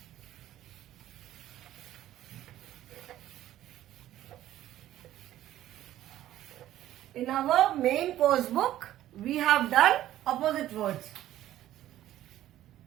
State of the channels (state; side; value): quieter; left; 13.4 dB